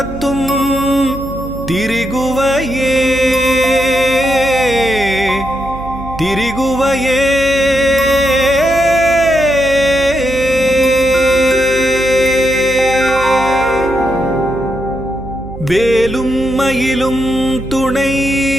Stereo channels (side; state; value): right; noise; hum, 12 dB below the sound